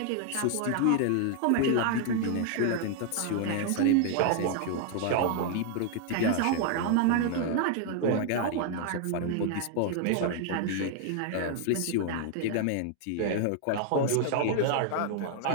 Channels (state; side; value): different; both; correlation 0.00